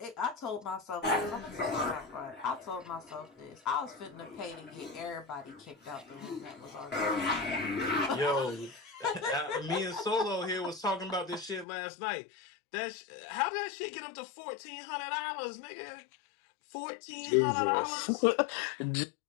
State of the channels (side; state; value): right; drops out; at 11.7 s